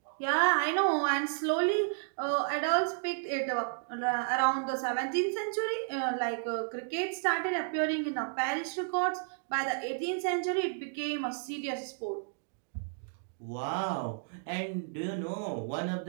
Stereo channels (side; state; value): left; silent; digital silence